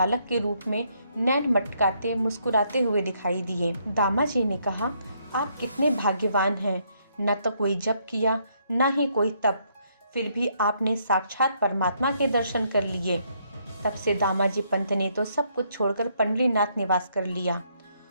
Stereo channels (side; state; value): both; inverted; correlation -0.72